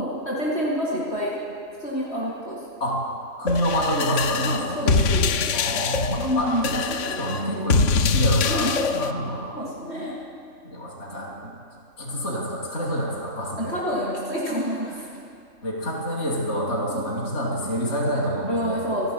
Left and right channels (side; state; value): right; late; 3.5 ms